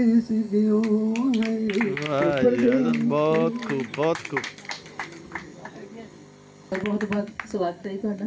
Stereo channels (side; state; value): both; identical; correlation 1.00